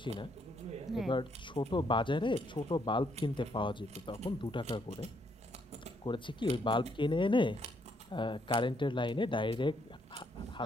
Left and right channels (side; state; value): both; normal; correlation 0.73